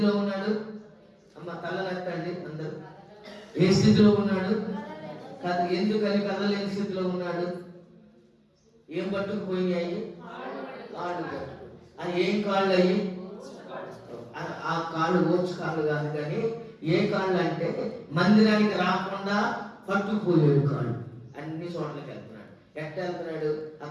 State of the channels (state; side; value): identical; both; correlation 1.00